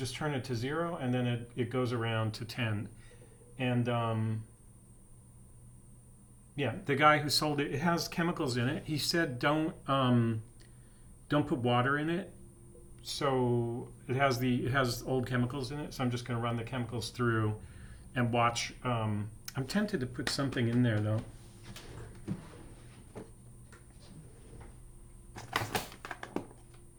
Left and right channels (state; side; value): identical; both; correlation 1.00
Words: turn it to 0, and then it goes around to 10. And yeah, the guy who sold it, it has chemicals in it. He said don't put water in it. So it has old chemicals in it. So I'm just going to run the chemicals through and watch. I'm tempted to put something in there though.